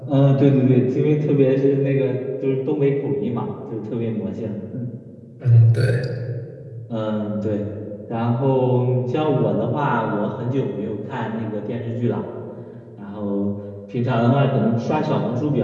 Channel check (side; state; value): both; identical; correlation 1.00